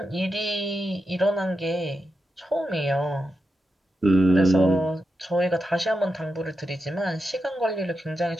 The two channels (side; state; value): both; normal; correlation 0.88